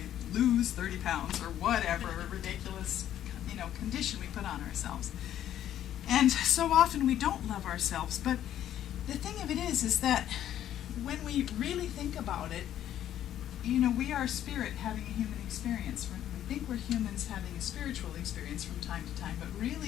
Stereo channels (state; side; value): quieter; right; 11.3 dB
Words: lose 30 pounds or whatever ridiculous, condition we put on ourselves. And so often we don't love ourselves. But the thing of it is that when we really think about it, we are spirit having a human experience. We think we're humans having a spiritual experience from time to time, but